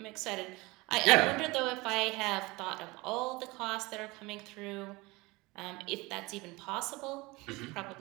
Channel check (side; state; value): left; quieter; 23.1 dB